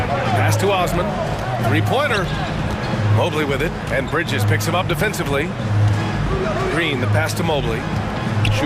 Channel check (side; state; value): both; identical; correlation 1.00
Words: Pass to Osman. 3-pointer. Mobley with it, and Bridges picks him up defensively. Green, the pass to Mobley.